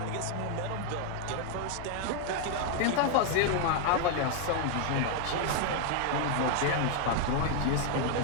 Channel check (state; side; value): different; both; correlation 0.01